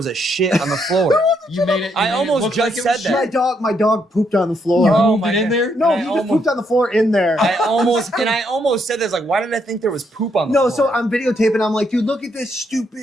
a shit on the floor? You made it. I almost just said that. My dog pooped on the floor. You Oh moved it in there? No, he just pooped on the floor in there. I almost said this. Like, why did I think there was poop on the floor? No, so I'm videotaping. I'm like, dude, look at this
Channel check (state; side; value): normal; both; correlation 0.75